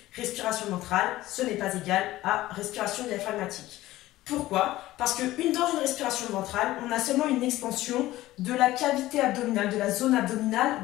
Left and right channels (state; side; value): quieter; right; 16.3 dB